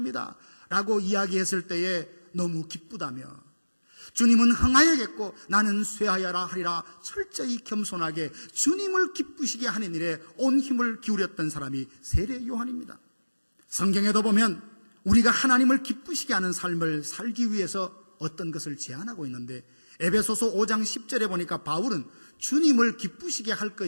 라고 이야기했을 때에 너무 기쁘다며, 주님은 흥하여겠고 나는 쇠하여라 하리라 철저히 겸손하게 주님을 기쁘시게 하는 일에 온 힘을 기울였던 사람이 세례 요한입니다. 성경에도 보면 우리가 하나님을 기쁘시게 하는 삶을 살기 위해서 어떤 것을 제안하고 있는데, 에베소서 5장 10절에 보니까 바울은 주님을 기쁘시게 할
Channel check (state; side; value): inverted; both; correlation -1.00